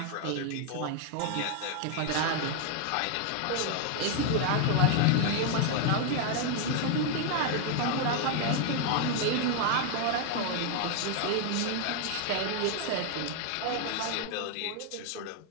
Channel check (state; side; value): different; both; correlation 0.00